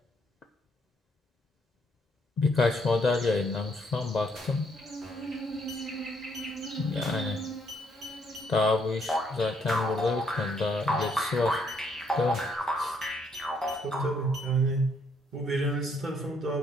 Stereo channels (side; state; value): both; normal; correlation 0.70